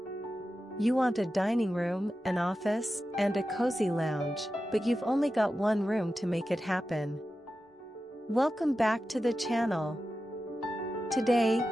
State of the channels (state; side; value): normal; both; correlation 0.92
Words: You want a dining room, an office, and a cozy lounge, but you've only got one room to make it happen. Welcome back to the channel. Today,